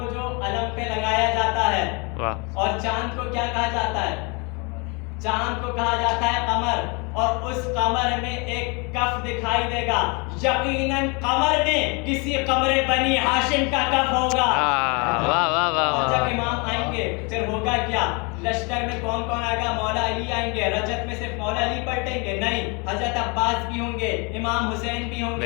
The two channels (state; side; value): quieter; right; 30.8 dB